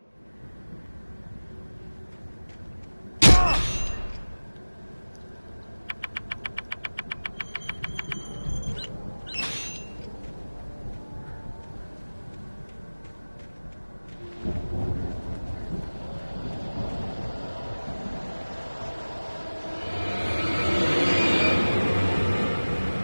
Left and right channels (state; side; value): inverted; both; correlation -1.00